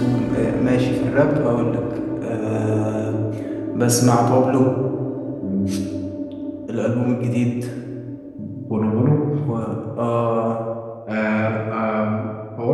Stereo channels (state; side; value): identical; both; correlation 1.00